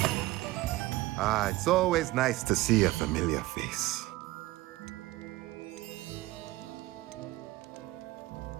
Ah, it's always nice to see a familiar face.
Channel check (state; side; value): quieter; left; 18.4 dB